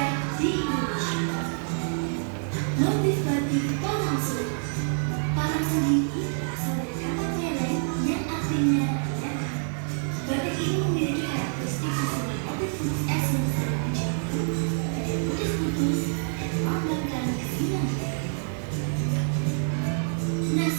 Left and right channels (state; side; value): silent; left; 60 dB below the other